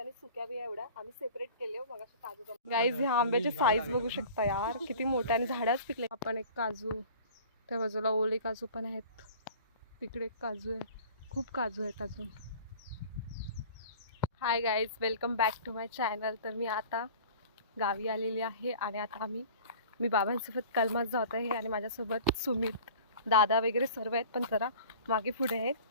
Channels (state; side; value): inverted; both; correlation -0.44